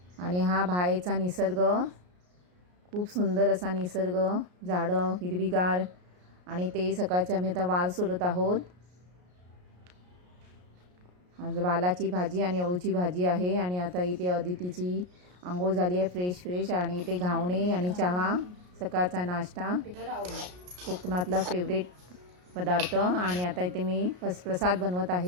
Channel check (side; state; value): left; late; 33 ms